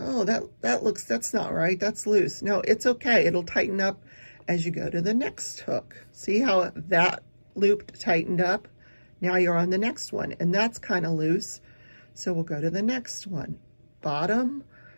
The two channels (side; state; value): both; inverted; correlation -1.00